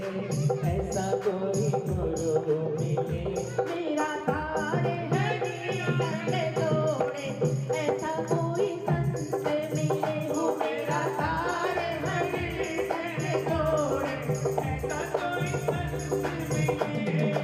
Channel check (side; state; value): both; identical; correlation 1.00